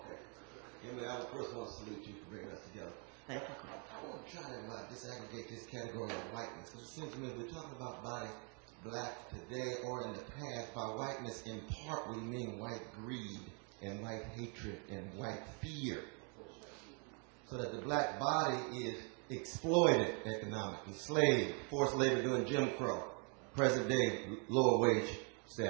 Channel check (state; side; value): quieter; left; 37.9 dB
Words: Emilie, I would first want to salute you for bringing us together. Thank you. I want to try to disaggregate this category of whiteness, because it seems to me we're talking about body black today or in the past. By whiteness, in part, we mean white greed and white hatred and white fear. So that the black body is exploited economically, enslaved, forced labor during Jim Crow, present day lower wage